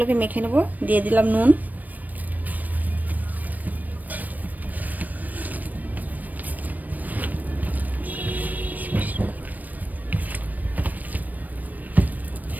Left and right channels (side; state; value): left; late; 0.082 ms